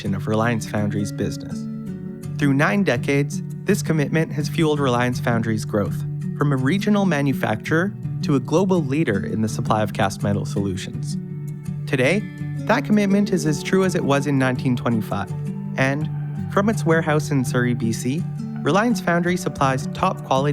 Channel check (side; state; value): both; identical; correlation 1.00